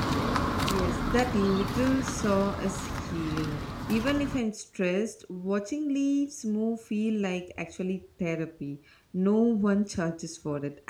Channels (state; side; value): identical; both; correlation 1.00